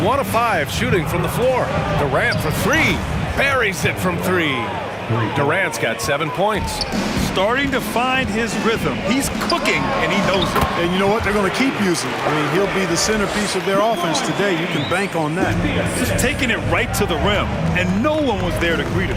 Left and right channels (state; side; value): identical; both; correlation 1.00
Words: of 5 shooting from the floor. Durant for 3. Buries it from 3. Durant's got 7 points. Starting to find his rhythm. He's cooking, and he knows it. And you know what? They're going to keep using him. I mean, he'll be the centerpiece of their offense today. You can bank on that. Just taking it right to the rim, and no one was there to greet him.